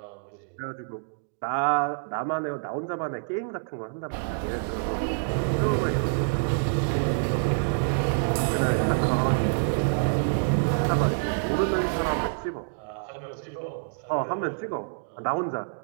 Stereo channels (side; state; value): left; silent; digital silence